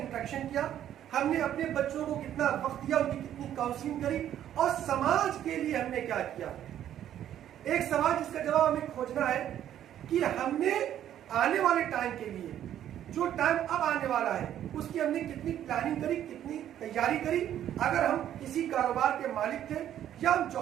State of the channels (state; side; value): quieter; left; 11.0 dB